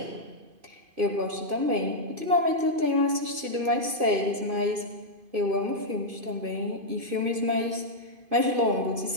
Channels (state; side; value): late; left; 2.5 ms